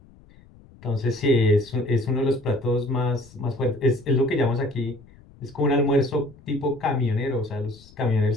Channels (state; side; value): noise; left; rumble, 25 dB below the sound